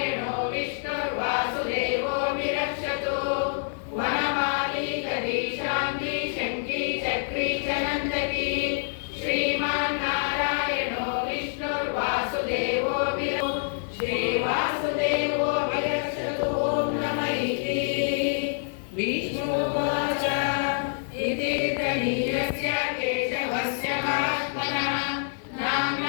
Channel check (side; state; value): right; silent; 58 dB below the other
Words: विष्णुर्वासुदेवो विरक्षतु वनमाली कवी शांति शक्ति चक्री च नंदकी श्रीमन्नारायणो विष्णुर्वासुदेवो श्रीवासुदेवो विरक्षतु ओम नमः इति विष्णुवाच इति तनीयस्य केशवस्य महात्मनः